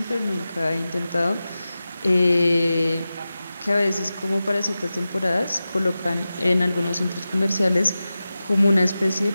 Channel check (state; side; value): inverted; both; correlation -0.95